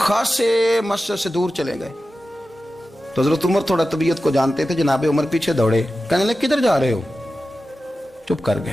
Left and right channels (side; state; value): both; normal; correlation 0.94